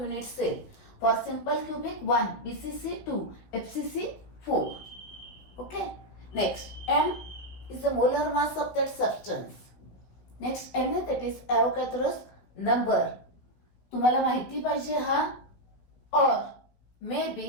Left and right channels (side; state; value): right; late; 16 ms